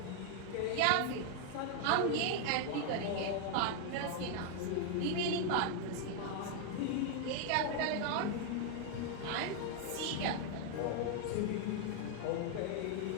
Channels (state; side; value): different; both; correlation 0.00